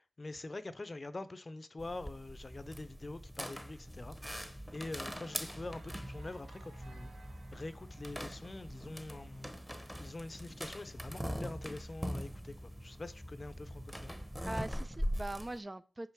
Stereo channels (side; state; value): both; normal; correlation 0.98